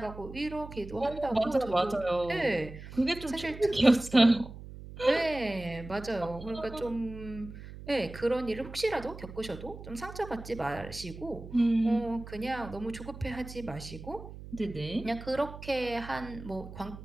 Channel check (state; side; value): noise; right; hum, 13 dB below the sound